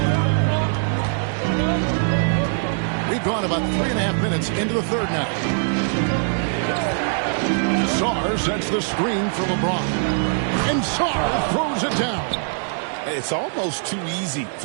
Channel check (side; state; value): left; silent; digital silence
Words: We've gone about 3.5 minutes into the third now. Sarr sets the screen for LeBron. And Sarr throws it down. It's almost too easy